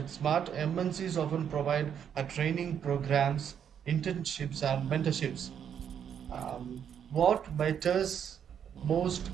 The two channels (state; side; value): quieter; left; 8.4 dB